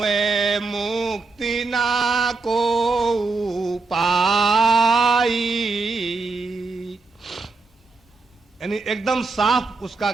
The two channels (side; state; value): left; quieter; 3.9 dB